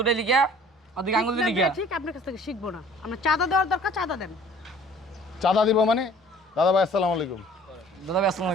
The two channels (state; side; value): normal; both; correlation 0.51